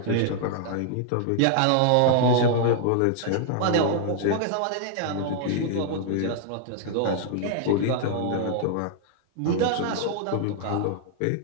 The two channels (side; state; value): both; different; correlation 0.00